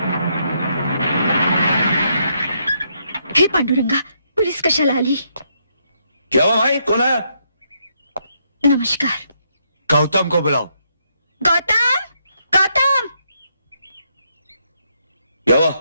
हे पांडुरंगा, पुलिस कशाला आली? क्या हुआ भाई, कौन आया? नमस्कार। गौतम को बुलाओ। गौतम, गौतम। क्या हुआ?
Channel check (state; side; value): inverted; both; correlation -0.76